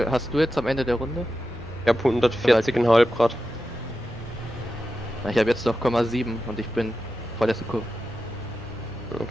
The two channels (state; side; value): normal; both; correlation 0.91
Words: hast du jetzt am Ende der Runde? Ich hab 140,5 Grad. Na, ich habe jetzt noch 0,7 und ich bin vorletzte Kurve.